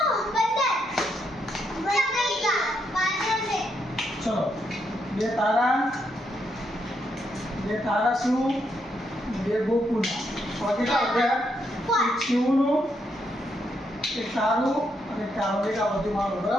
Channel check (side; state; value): both; normal; correlation 0.78